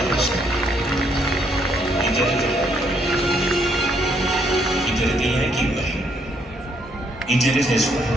he did it the right way. He did it the Yankee way. He did it his way.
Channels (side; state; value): both; normal; correlation 0.71